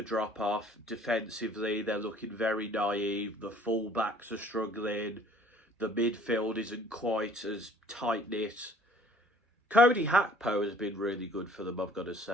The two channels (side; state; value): both; normal; correlation 0.54